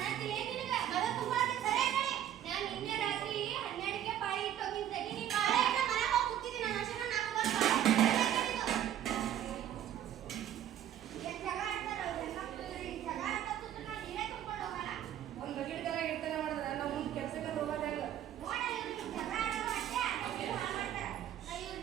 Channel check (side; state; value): left; quieter; 10.9 dB